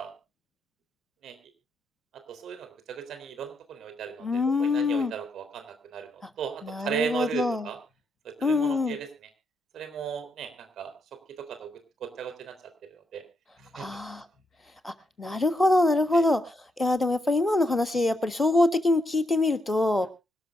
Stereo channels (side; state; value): both; normal; correlation 0.80